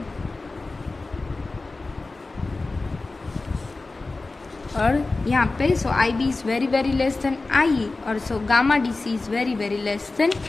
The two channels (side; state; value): right; quieter; 3.4 dB